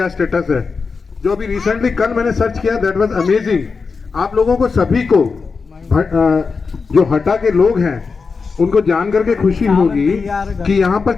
स्टेटस है। जो अभी रिसेंटली कल मैंने सर्च किया, दैट वाज अमेजिंग। आप लोगों को सभी को जो हटा के लोग हैं उनको जान करके खुशी होगी कि यहाँ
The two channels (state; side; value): quieter; right; 4.9 dB